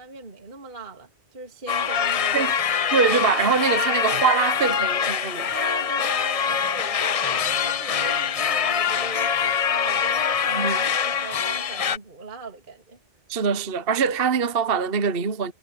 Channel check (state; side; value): late; left; 1.7 ms